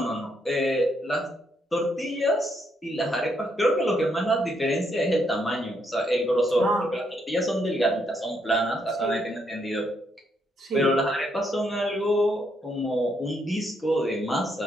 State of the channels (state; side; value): normal; both; correlation 0.75